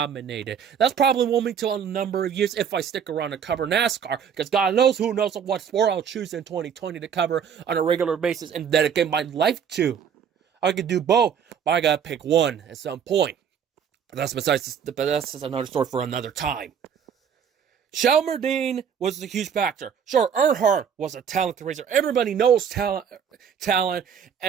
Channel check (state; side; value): quieter; left; 7.6 dB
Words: That's probably won't be till a number of years if I stick around to cover NASCAR, because God knows who knows what sport I'll choose in 2020 to cover on a regular basis and dedicate my life to. I could do both, but I gotta pick one at some point. But that's another story for another time. Shelmerdine was a huge factor. Sure, Earnhardt was a talented racer. Everybody knows talent